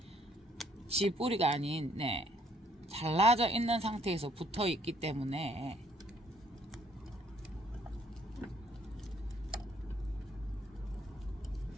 지 뿌리가 아닌 잘라져 있는 상태에서 붙어 있기 때문에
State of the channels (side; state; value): both; normal; correlation 0.65